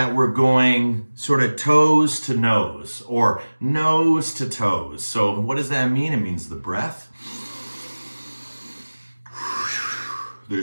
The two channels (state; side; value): inverted; both; correlation -1.00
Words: we're going sort of toes to nose or nose to toes. So what does that mean? It means the breath.